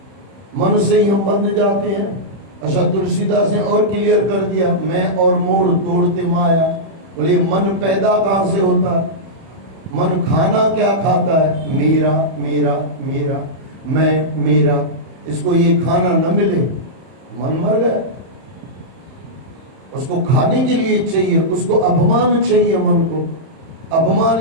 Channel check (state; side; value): late; left; 31 ms